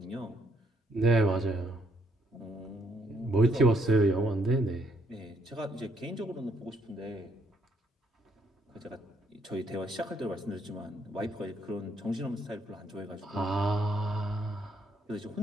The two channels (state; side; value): normal; both; correlation 0.71